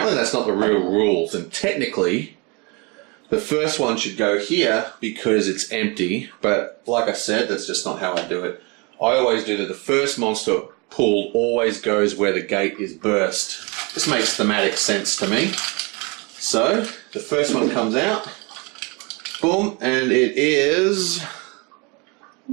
that's not the real rules, and technically the first one should go here because it's empty, but like I said, that's just not how I do it. I always do that the first monster pulled always goes where the gate is burst. This makes thematic sense to me. So, the first one comes out, boom, and it is...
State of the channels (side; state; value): left; quieter; 29.2 dB